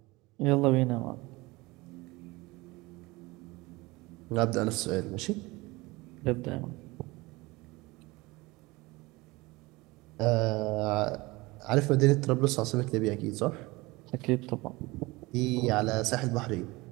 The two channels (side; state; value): left; quieter; 22.3 dB